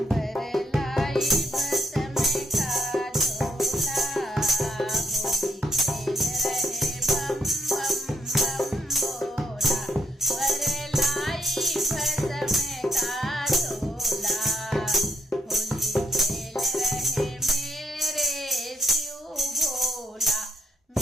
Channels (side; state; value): both; normal; correlation 0.76